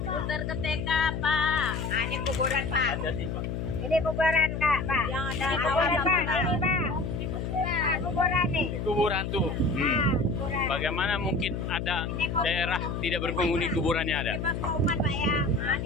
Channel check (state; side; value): noise; left; hum, 3 dB below the sound